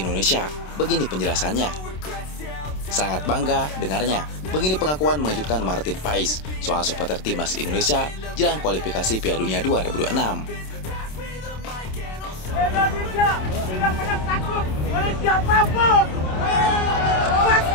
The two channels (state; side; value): late; right; 27 ms